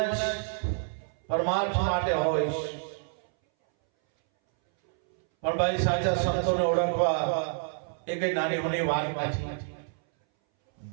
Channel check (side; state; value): left; silent; 59 dB below the other